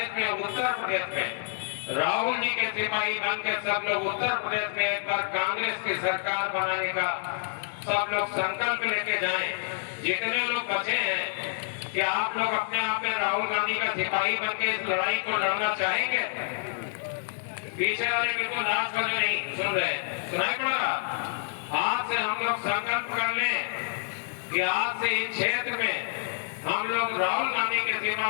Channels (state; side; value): silent; right; digital silence